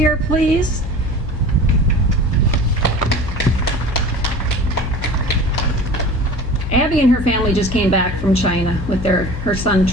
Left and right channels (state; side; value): noise; left; hum, 7 dB below the sound